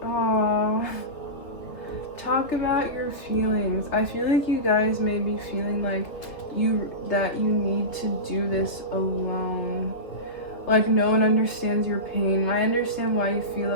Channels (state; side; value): late; right; 2.7 ms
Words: Aww. Talk about your feelings. I feel like you guys may be feeling like you need to do this alone. Like no one understands your pain. I understand why you feel